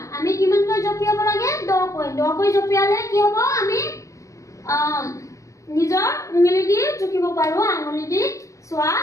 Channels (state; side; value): late; right; 0.15 ms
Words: আমি কিমান কৈ জপিয়াব লাগে 10 কৈ জপিয়ালে কি হ'ব আমি নিজৰ উঙলি দি জুকিব পাৰো আঙুলি দি চোৱা